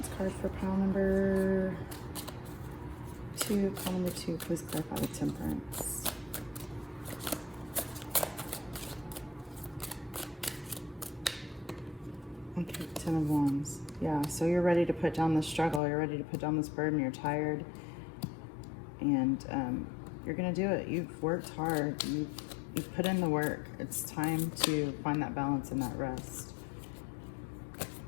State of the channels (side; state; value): right; drops out; at 15.8 s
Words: card for pile number 2. Pile number 2, please clarify the Temperance. Okay, Ten of Wands. Yeah, so you're ready to put down the struggle. You're ready to put down this burden. You're tired. And you're going to do it. You've worked hard. You've put in the work. It's time to find that balance and that rest.